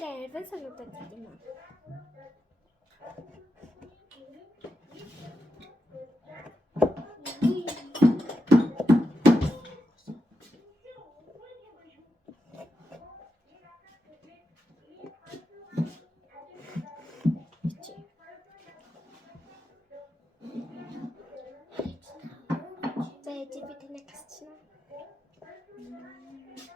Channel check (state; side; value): normal; both; correlation 0.87